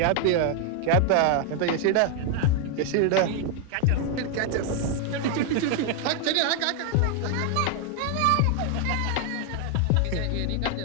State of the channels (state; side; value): different; both; correlation 0.00